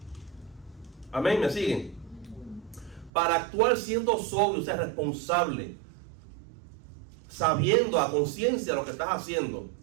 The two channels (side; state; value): left; drops out; at 3.1 s